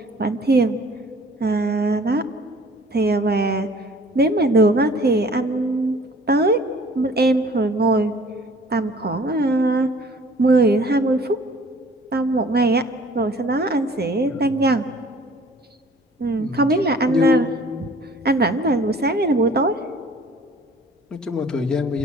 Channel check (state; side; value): normal; both; correlation 0.52